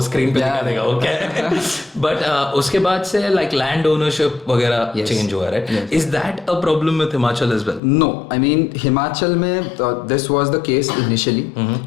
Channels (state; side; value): drops out; right; at 7.8 s